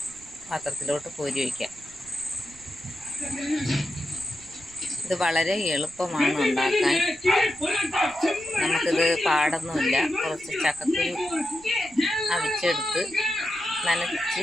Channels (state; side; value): noise; right; rumble, 24 dB below the sound